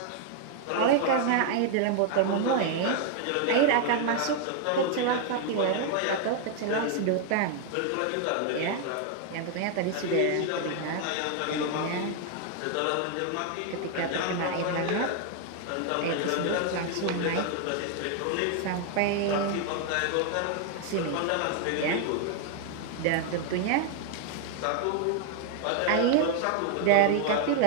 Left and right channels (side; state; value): both; different; correlation 0.00